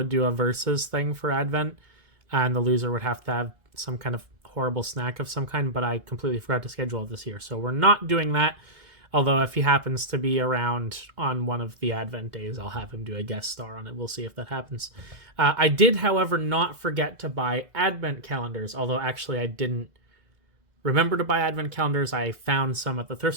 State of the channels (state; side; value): late; left; 2.0 ms